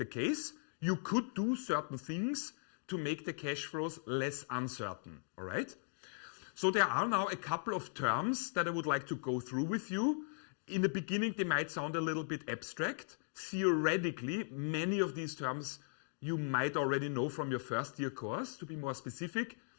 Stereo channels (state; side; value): silent; right; digital silence